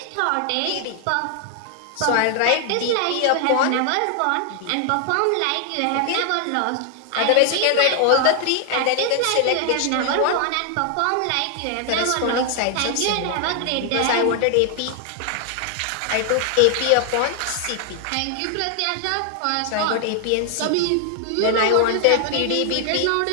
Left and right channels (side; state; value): both; different; correlation 0.00